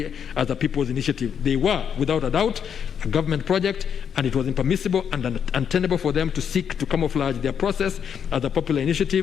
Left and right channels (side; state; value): right; quieter; 7.8 dB